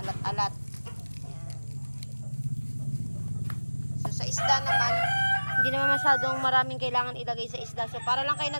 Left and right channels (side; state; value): both; inverted; correlation -1.00